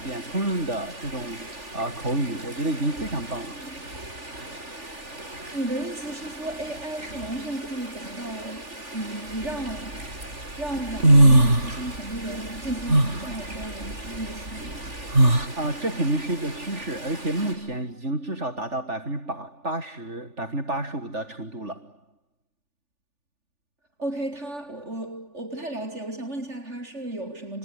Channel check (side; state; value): left; late; 3.4 ms